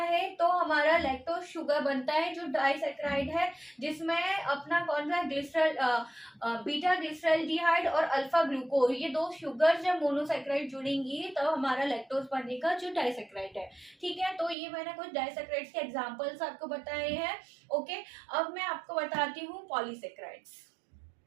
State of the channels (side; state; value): left; drops out; at 14.6 s